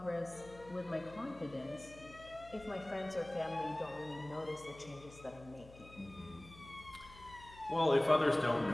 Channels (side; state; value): left; noise; hum, 19 dB below the sound